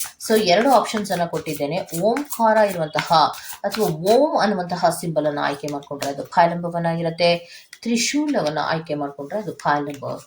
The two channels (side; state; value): both; identical; correlation 1.00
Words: ಸೊ 2 ಆಪ್ಷನ್ಸ್ ಅನ್ನ ಕೊಟ್ಟಿದ್ದೇನೆ. ಓಂಕಾರ ಇರುವಂತಹ ಅಥವಾ ಓಂ ಅನ್ನುವಂತಹ ಸಿಂಬಲ್ ಅನ್ನ ಆಯ್ಕೆ ಮಾಡ್ಕೊಂಡ್ರೆ ಅದು ಫೈಲ್ ನಂಬರ್ 1 ಆಗಿರುತ್ತೆ. ತ್ರಿಶೂಲವನ್ನ ಆಯ್ಕೆ ಮಾಡ್ಕೊಂಡ್ರೆ ಅದು ಫೈಲ್ ನಂಬರ್